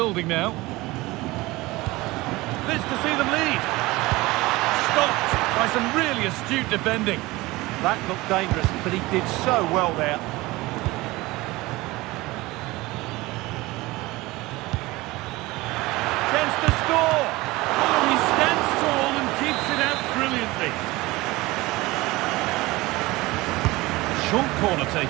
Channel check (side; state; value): left; quieter; 20.6 dB